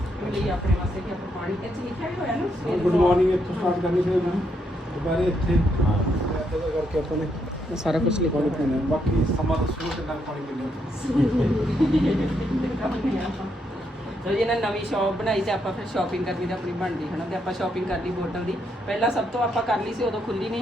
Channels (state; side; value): normal; both; correlation 0.77